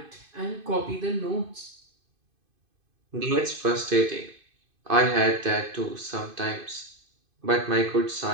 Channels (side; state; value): left; late; 2.5 ms